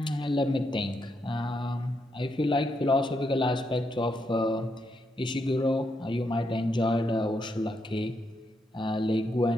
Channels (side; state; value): both; normal; correlation 0.80